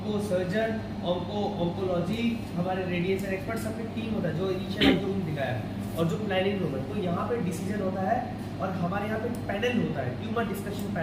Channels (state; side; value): identical; both; correlation 1.00